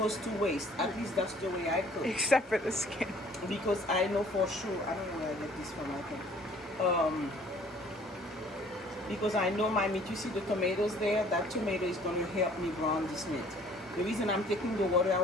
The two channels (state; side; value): normal; both; correlation 0.56